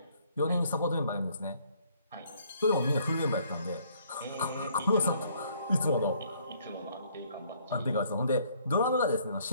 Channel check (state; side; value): inverted; both; correlation -0.64